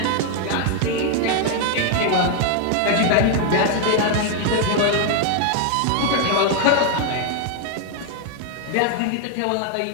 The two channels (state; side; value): different; both; correlation 0.01